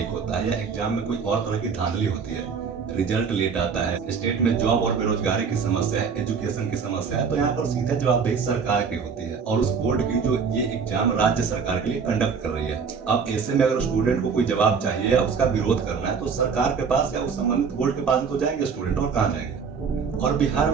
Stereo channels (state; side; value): quieter; left; 5.9 dB